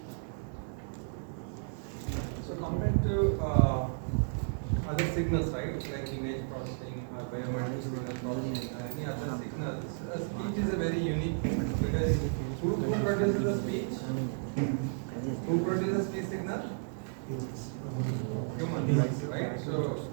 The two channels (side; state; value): left; silent; 56 dB below the other